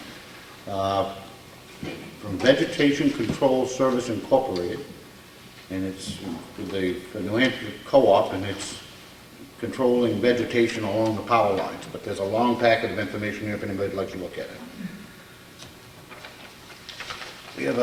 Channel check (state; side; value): identical; both; correlation 1.00